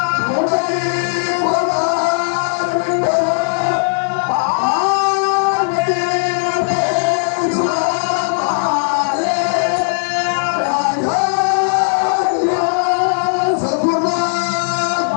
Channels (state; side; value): silent; right; digital silence